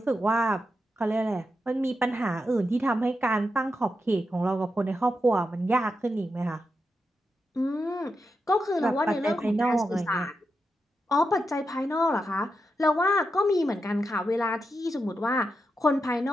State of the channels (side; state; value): both; normal; correlation 0.87